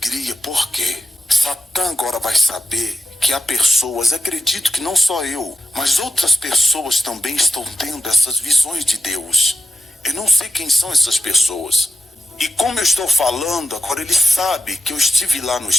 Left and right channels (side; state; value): both; normal; correlation 0.92